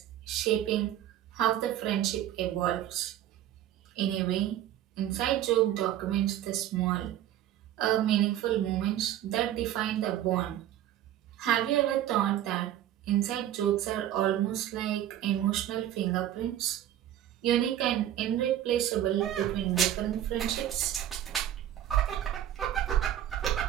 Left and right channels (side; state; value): left; quieter; 12.0 dB